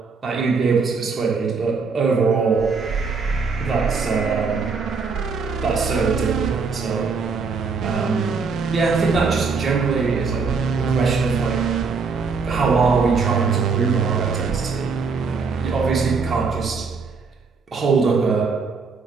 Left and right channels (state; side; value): quieter; left; 4.8 dB